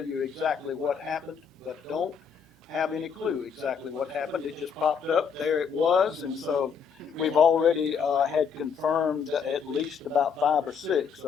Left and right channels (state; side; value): quieter; right; 6.6 dB